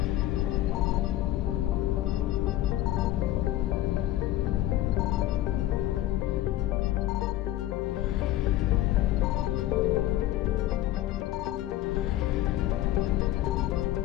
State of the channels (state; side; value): quieter; right; 14.7 dB